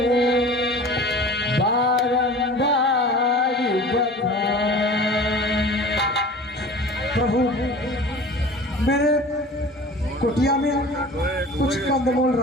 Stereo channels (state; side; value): normal; both; correlation 0.41